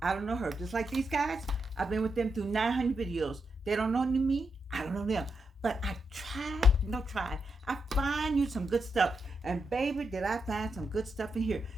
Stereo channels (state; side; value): normal; both; correlation 0.84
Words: I don't know her. Just like these guys, I've been with them through 900 videos. They don't know me. I don't know them. But I try. I find you some good stuff. And baby, did I find some good stuff in here.